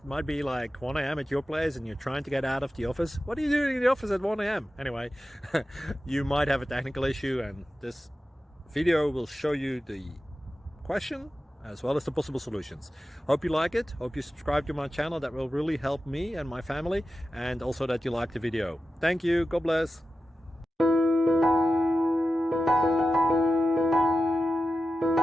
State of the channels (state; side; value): normal; both; correlation 0.92